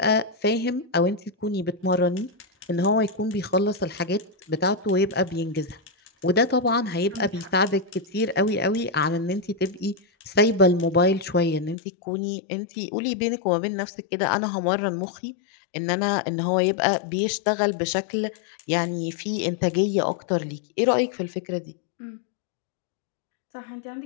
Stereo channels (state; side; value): drops out; right; at 11.8 s